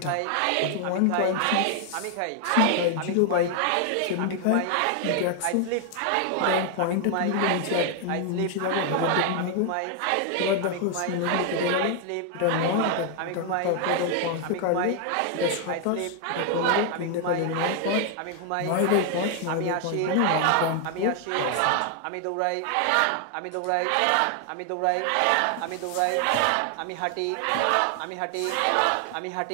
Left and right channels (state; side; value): different; both; correlation 0.00